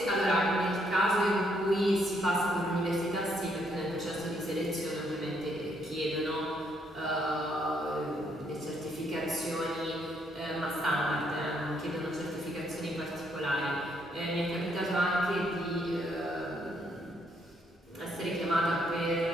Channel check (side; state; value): both; normal; correlation 0.72